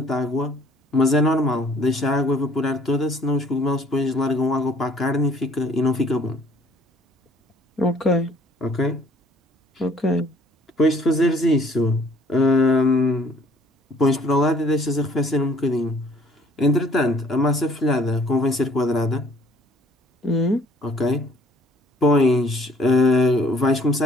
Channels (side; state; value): both; normal; correlation 0.57